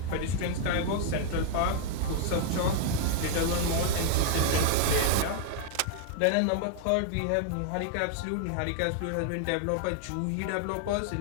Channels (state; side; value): different; both; correlation 0.00